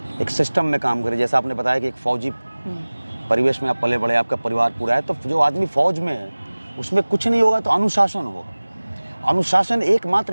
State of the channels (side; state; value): both; inverted; correlation -1.00